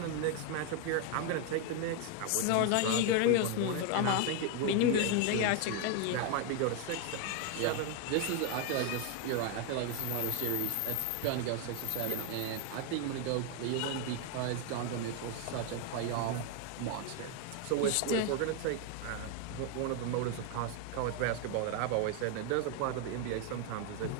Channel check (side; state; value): both; different; correlation 0.01